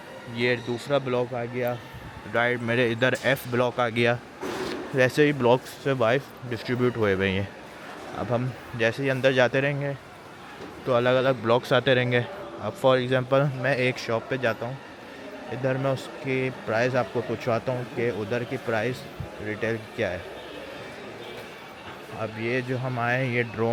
ये दूसरा ब्लॉक आ गया राइट मेरे इधर F ब्लॉक आ गया। वैसे ही ब्लॉक्स से वाइज डिस्ट्रीब्यूट हुए हुए हैं। अब हम जैसे ही अंदर जाते रहेंगे तो अलग अलग ब्लॉक्स आते रहेंगे। अब फॉर एग्ज़ाम्पल मैं एक शॉप पे जाता हूँ, इधर मैं उसकी प्राइस आपको पूछवाता हूँ कि उधर की प्राइस रिटेल क्या है। अब ये जो हम आए ये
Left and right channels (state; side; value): identical; both; correlation 1.00